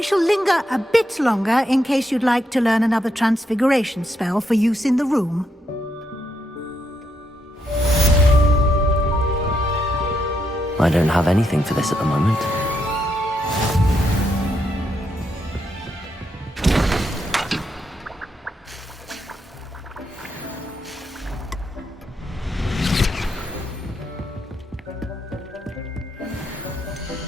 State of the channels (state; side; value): normal; both; correlation 0.79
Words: shall linger a bit longer in case you'd like to learn another transfiguration spell for use in the room. I don't have anything for this at the moment.